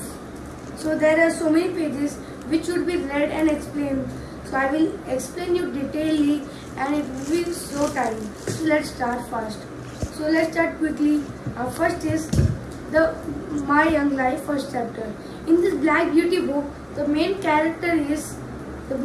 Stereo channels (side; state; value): both; identical; correlation 1.00